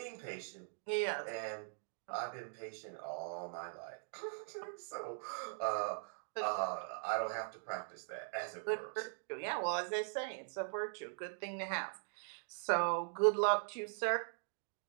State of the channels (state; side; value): silent; left; digital silence